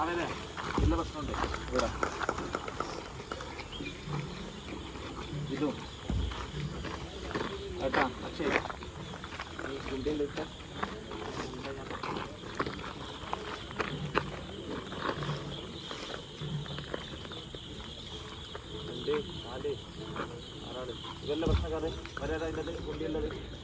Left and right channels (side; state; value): both; identical; correlation 1.00